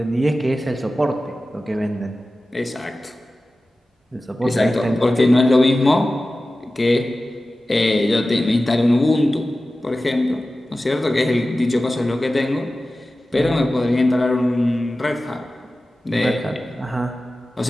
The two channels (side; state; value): both; normal; correlation 0.95